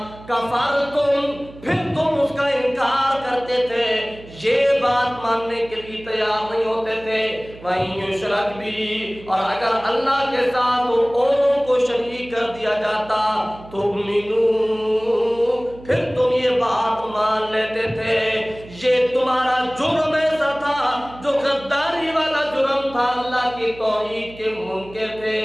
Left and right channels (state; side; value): noise; right; hum, 19 dB below the sound